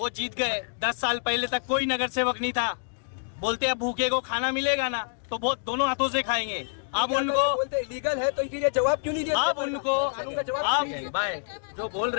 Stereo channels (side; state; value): right; silent; digital silence